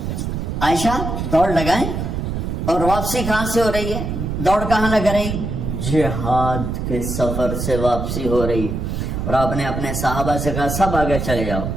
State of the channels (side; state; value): right; noise; rumble, 3 dB below the sound